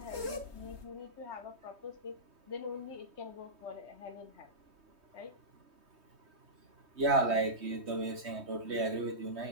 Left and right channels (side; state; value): left; late; 3.2 ms